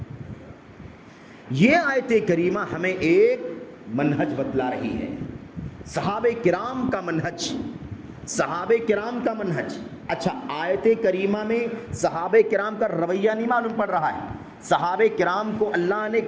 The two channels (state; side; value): identical; both; correlation 1.00